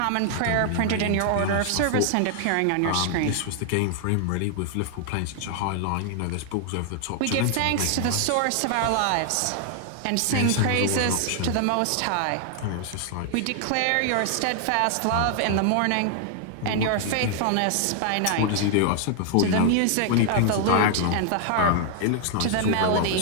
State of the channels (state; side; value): different; both; correlation 0.00